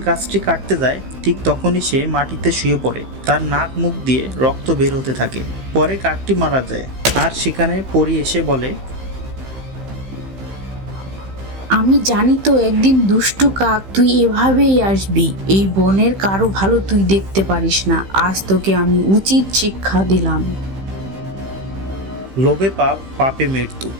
গাছটি কাটতে যায় ঠিক তখনই সে মাটিতে শুয়ে পড়ে। তার নাক মুখ দিয়ে রক্ত বের হতে থাকে। পরে কাকটি মারা যায়, আর সেখানে পরী এসে বলে, আমি জানি তো একদিন দুষ্টু কাক তুই এভাবেই আসবি। এই বনের কারো ভালো তুই দেখতে পারিস না। আজ তোকে আমি উচিত শিক্ষা দিলাম। লোভে পাপ, পাপে মৃত্যু,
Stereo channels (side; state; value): left; late; 15 ms